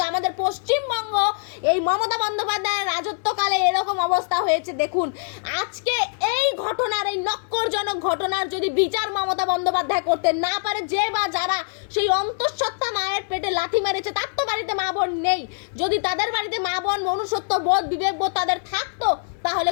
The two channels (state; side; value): silent; right; 63 dB below the other